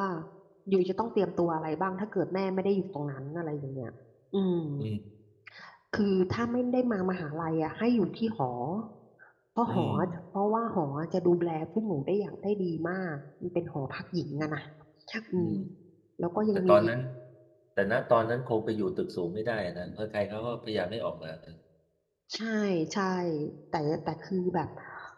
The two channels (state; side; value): identical; both; correlation 1.00